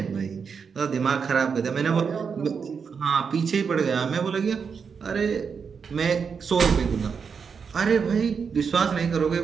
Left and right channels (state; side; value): quieter; left; 6.1 dB